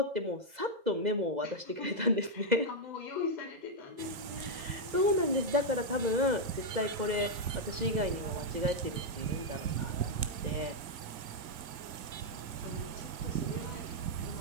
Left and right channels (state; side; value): late; left; 2.0 ms